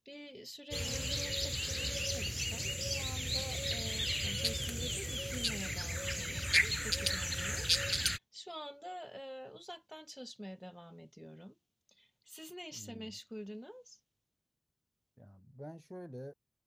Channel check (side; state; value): both; identical; correlation 1.00